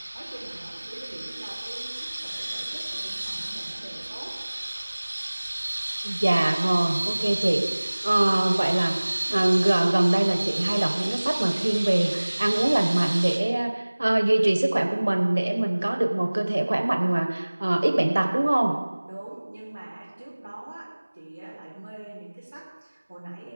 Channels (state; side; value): inverted; both; correlation -1.00